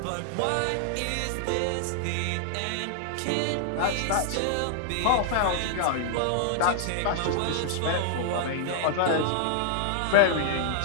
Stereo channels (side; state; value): both; different; correlation -0.01